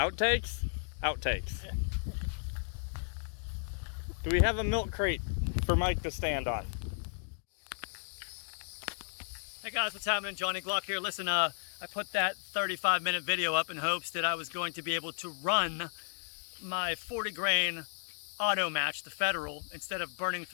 Outtakes. Yeah. Do we have a milk crate for Mike to stand on? Hey guys, what's happening? Johnny Glock here. Listen, I put that 35-minute video up in hopes that I was going to be able to run my 40 grain auto match, the Federal, instead of burning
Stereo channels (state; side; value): silent; right; digital silence